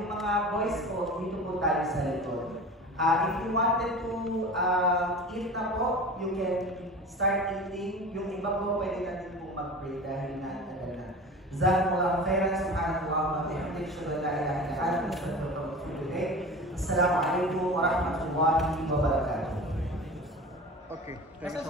mga boys po, dito po tayo sa likod. If you wanted to eat na po, you can start eating. Yung iba po, pwede natin po mag-pray dahil na-tagal na. Jazakumullahu khairan, subhanallah wa bihamdihi, asyhadu an la ilaha illa anta, astaghfiruka wa atubu ilayk. Assalamu alaikum wa rahmatullahi wa barakatuh. Okay. Thank you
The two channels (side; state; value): both; normal; correlation 0.35